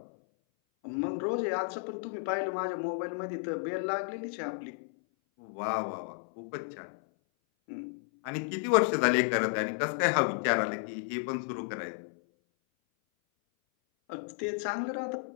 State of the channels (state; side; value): silent; right; 56 dB below the other